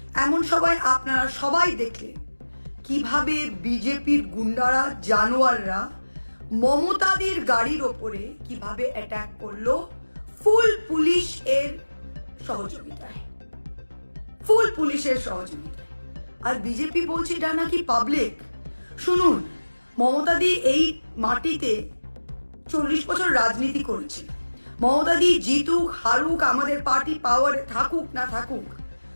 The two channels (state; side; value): inverted; both; correlation -1.00